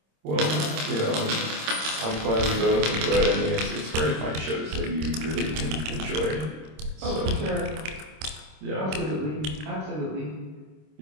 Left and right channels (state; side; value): late; left; 26 ms